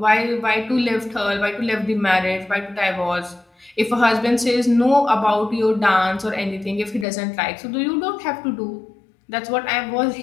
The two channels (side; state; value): right; drops out; at 7.1 s